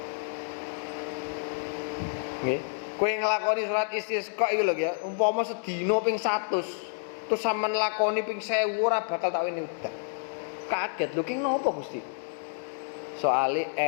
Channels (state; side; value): silent; right; digital silence